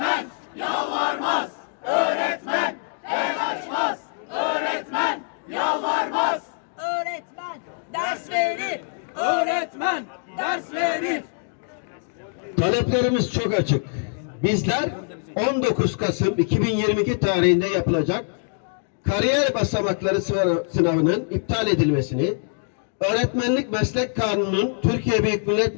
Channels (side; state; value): right; silent; digital silence